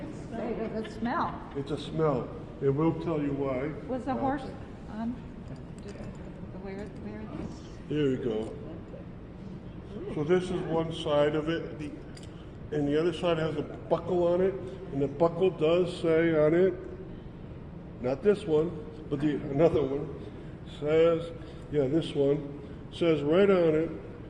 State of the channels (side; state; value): both; identical; correlation 1.00